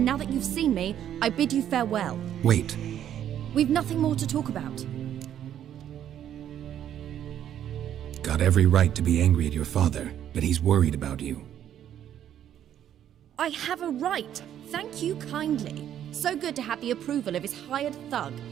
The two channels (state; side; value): quieter; left; 10.5 dB